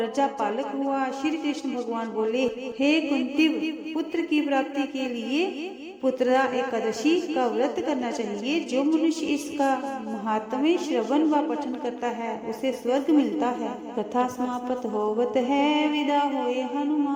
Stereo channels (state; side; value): identical; both; correlation 1.00